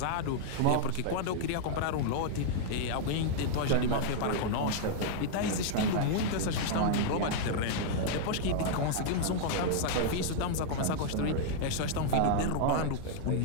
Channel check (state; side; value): different; both; correlation -0.01